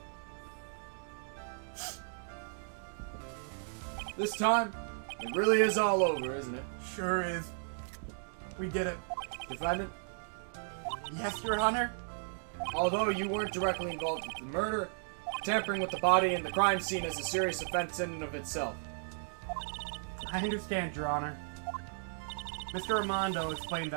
This time, it really is all over, isn't it? Sure is. We did it. Defendant, Yes, Your Honor. although you weren't directly involved with the murder, tampering with the body and the crime scene is a serious offense in and of itself. I understand, Your Honor. Mr. Armando explained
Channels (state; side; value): silent; left; digital silence